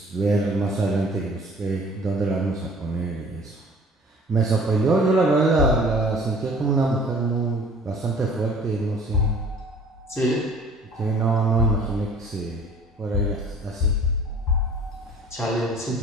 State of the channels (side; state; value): both; normal; correlation 0.50